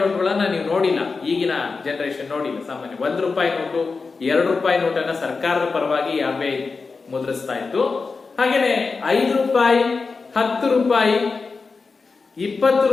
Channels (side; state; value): right; quieter; 4.4 dB